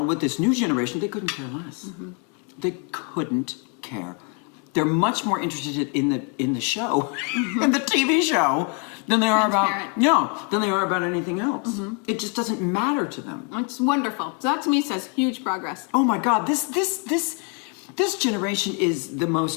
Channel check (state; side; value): quieter; right; 37.7 dB